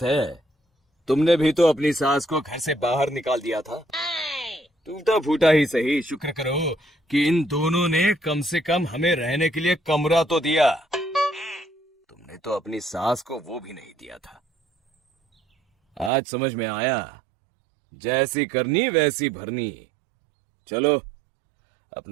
है? तुमने भी तो अपनी सास को घर से बाहर निकाल दिया था। टूटा फूटा ही सही, शुक्र करो कि इन दोनों ने कम से कम हमें रहने के लिए कमरा तो दिया। तुमने तो अपनी सास को वो भी नहीं दिया था। आज समझ में आया, जैसी करनी वैसी भरनी। चलो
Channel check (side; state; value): left; drops out; at 16.1 s